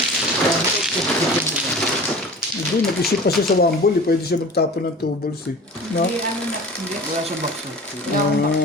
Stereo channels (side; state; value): both; normal; correlation 0.39